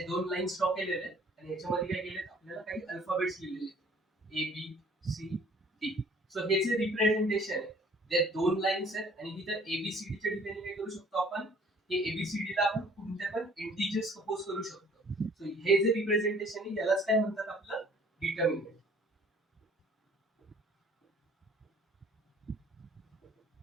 दोन लाईन्स ड्रॉ केलेले आहेत आणि याच्यामध्ये काय केले, आपल्याला काही अल्फाबेट्स लिहिलेले आहेत A B C D. So हे जे रिप्रेझेंटेशन आहे, जे दोन लाईन्स आहेत आणि तिथे एबीसीडी च्या ठिकाणी काय करू शकतो आपण, हे एबीसीडी ला आपण कोणत्या पण इंटिजर्स सपोज करू शकतो. सो हे जे रिप्रेझेंटेशन आहे यालाच काय म्हणतात, आपलं डिटर्मिनंट.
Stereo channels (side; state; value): both; normal; correlation 0.55